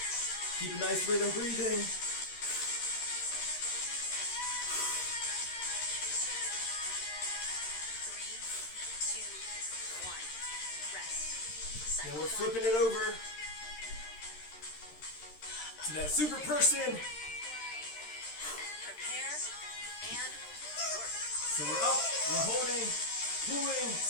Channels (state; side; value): late; right; 13 ms